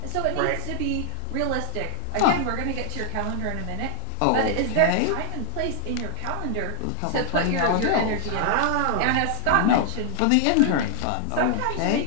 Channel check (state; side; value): different; both; correlation 0.00